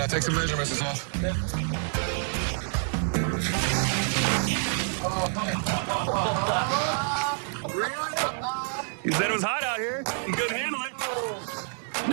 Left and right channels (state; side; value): silent; left; 60 dB below the other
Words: I'll take some measurements and stuff. Yeah. You said it was hot out here. You couldn't handle it.